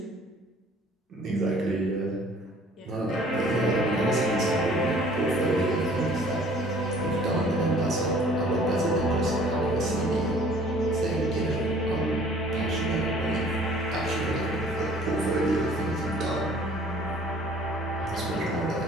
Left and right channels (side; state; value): both; normal; correlation 0.53